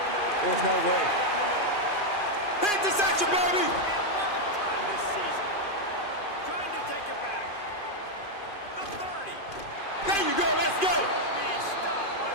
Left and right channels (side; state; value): right; late; 2.5 ms